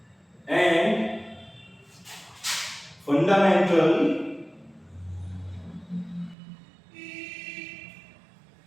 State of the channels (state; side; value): drops out; left; at 6.4 s